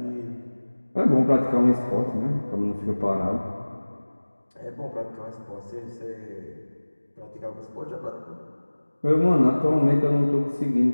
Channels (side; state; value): both; inverted; correlation -1.00